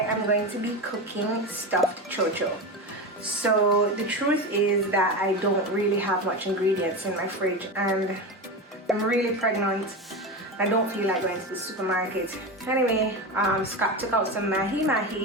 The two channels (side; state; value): both; normal; correlation 0.21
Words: going to be cooking stuffed cho cho. So the truth is that I don't really have much ingredients in my fridge, and I'm really pregnant. I don't feel like going to the supermarket. Anyway, Scott took out some mahi